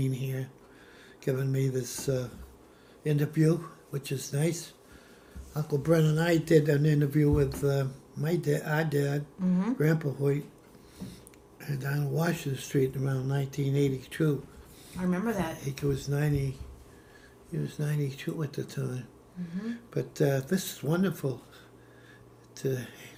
here giving me this interview, which is nice. Uncle Brent and I did an interview with my dad, our dad, Grandpa Hoyt, down Washington Street around 1982. I remember that. He was 90. He was 92 at the time. But this is wonderful to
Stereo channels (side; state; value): both; identical; correlation 1.00